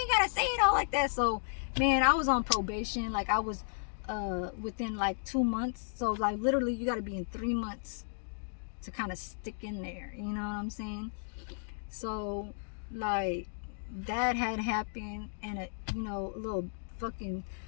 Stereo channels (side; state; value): right; silent; digital silence